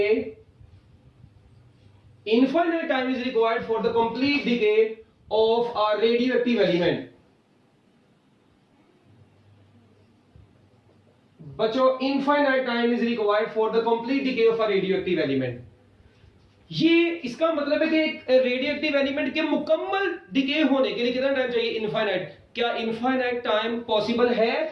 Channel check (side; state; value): both; identical; correlation 1.00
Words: infinite time is required for the complete decay of a radioactive element। बच्चों infinite time is required for the complete decay of a radioactive element। ये इसका मतलब है कि एक radioactive element के मुकम्मल decay होने के लिए कितना टाइम चाहिए? इनफाइनाइट। क्या इनफाइनाइट टाइम पॉसिबल